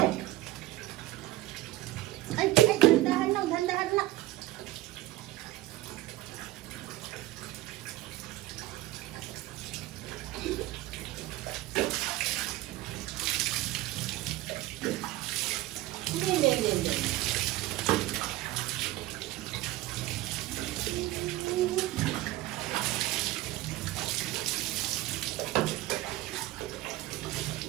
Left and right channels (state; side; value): quieter; left; 17.0 dB